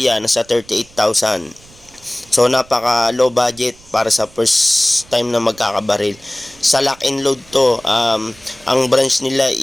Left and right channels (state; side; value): noise; right; rumble, 26 dB below the sound